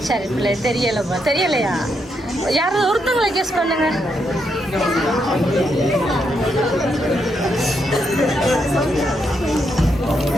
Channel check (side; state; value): both; normal; correlation 0.79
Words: சரி பிள்ளை தெரியலப்பா. தெரியலையா? யாராவது ஒருத்தவங்களை கெஸ் பண்ணுங்க.